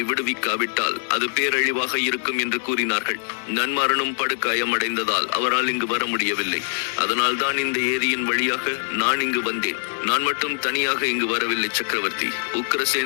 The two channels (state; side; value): silent; right; 63 dB below the other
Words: விடுவிக்காவிட்டால் அது பேரழிவாக இருக்கும் என்று கூறினார்கள். நன்மாறனும் படுகாயம் அடைந்ததால் அவரால் இங்கு வர முடியவில்லை. அதனால் தான் இந்த ஏரியின் வழியாக நான் இங்கு வந்தேன். நான் மட்டும் தனியாக இங்கு வரவில்லை சக்கரவர்த்தி.